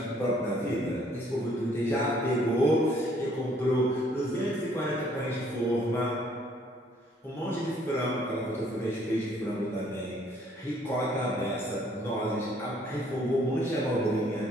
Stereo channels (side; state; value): both; normal; correlation 0.63